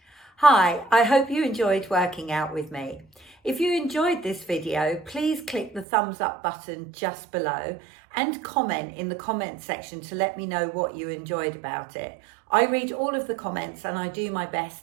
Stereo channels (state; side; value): drops out; left; at 5.9 s